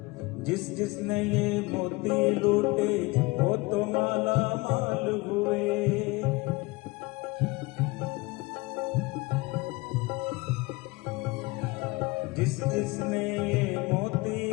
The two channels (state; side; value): quieter; right; 23.6 dB